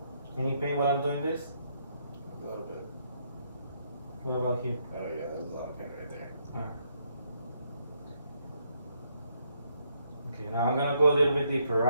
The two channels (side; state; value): both; inverted; correlation -0.73